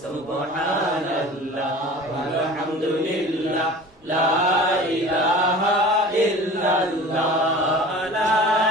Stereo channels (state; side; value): normal; both; correlation 0.40